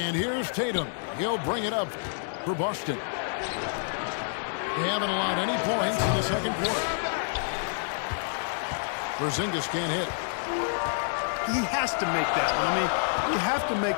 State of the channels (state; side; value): silent; right; digital silence